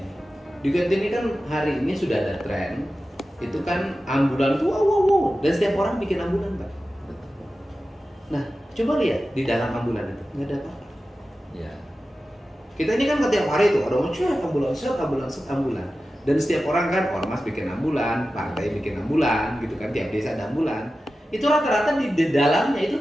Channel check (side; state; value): both; normal; correlation 0.94